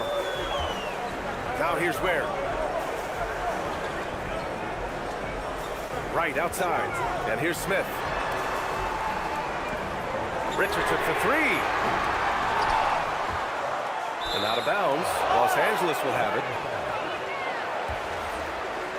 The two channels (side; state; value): both; identical; correlation 1.00